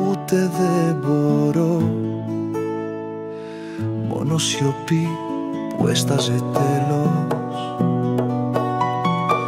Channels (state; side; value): identical; both; correlation 1.00